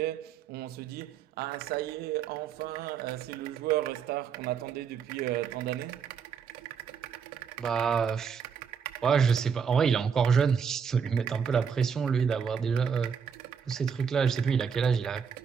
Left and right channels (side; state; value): left; quieter; 6.7 dB